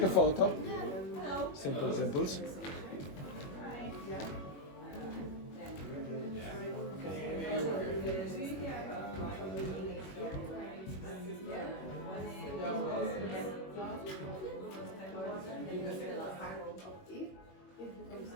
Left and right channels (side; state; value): right; late; 21 ms